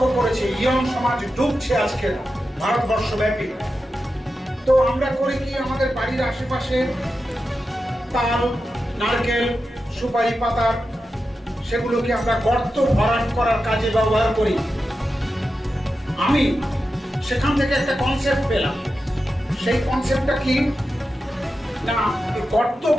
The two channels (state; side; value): normal; both; correlation 0.91